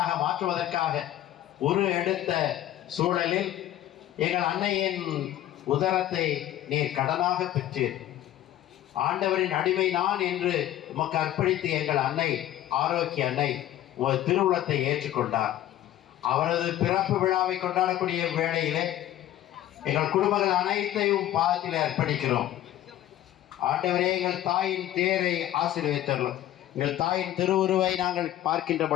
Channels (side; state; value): right; quieter; 13.0 dB